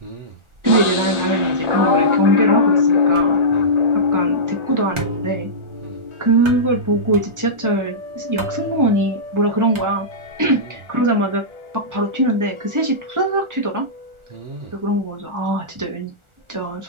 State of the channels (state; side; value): late; left; 1.4 ms